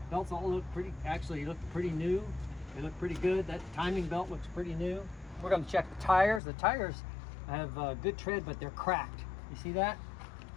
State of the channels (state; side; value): drops out; right; at 6.4 s